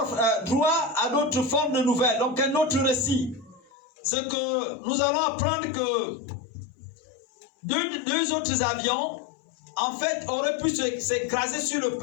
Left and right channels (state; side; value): drops out; right; at 3.7 s